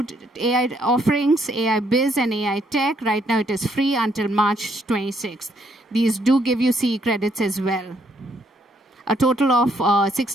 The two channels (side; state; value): both; normal; correlation 0.71